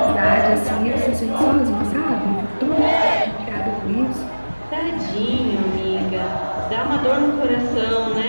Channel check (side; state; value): both; inverted; correlation -1.00